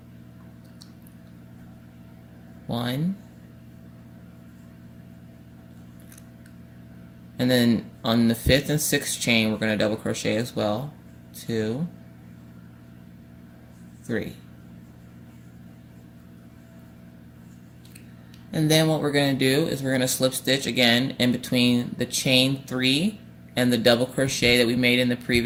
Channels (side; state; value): both; identical; correlation 1.00